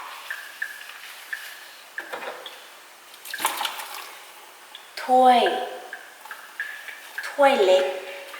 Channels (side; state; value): both; identical; correlation 1.00